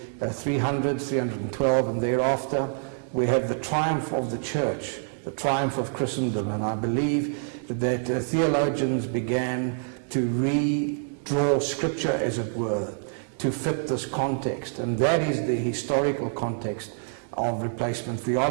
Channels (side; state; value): left; silent; digital silence